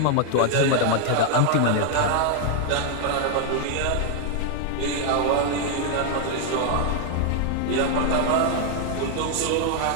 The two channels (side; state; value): both; different; correlation 0.00